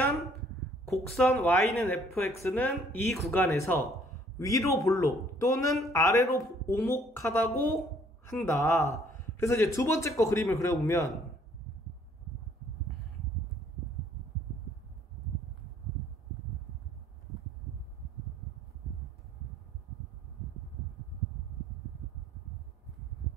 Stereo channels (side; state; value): both; normal; correlation 0.61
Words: 곡선 y는 fx는 이 구간에서 위로 볼록 또는 아래로 오목하다고 한다. 그래서 이제 두 번째 거 그림을 그려보면